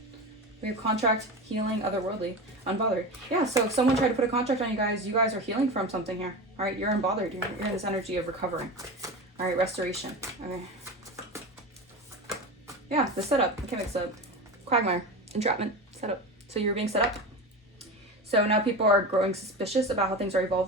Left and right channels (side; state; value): both; normal; correlation 0.26